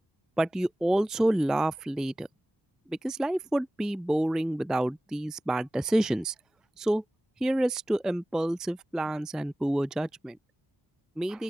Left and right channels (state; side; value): normal; both; correlation 0.97